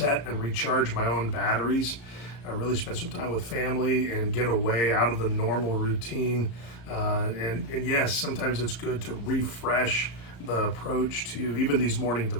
and recharge my own batteries. I really spend some time with family and get away out of the normal routine. And yes, sometimes it's good to refresh the approach to even these morning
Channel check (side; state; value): right; late; 34 ms